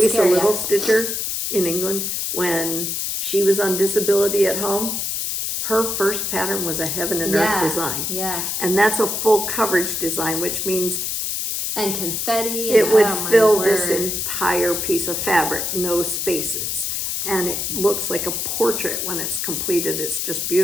Little Stitcher in England. When she was on disability at home, her first pattern was a heaven and earth design. Yeah. And that's a full coverage design, which means and confetti. It would fill this entire piece of fabric, no spaces. And it looks like a portrait when it's completed. It's just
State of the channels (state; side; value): noise; left; hiss, 2 dB below the sound